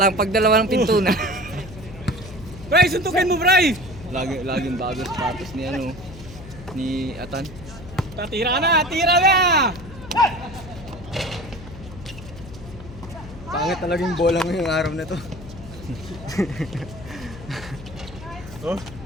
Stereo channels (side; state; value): left; noise; hum, 15 dB below the sound